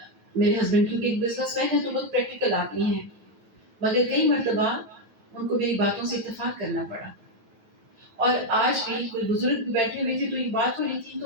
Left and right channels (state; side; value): late; left; 9.2 ms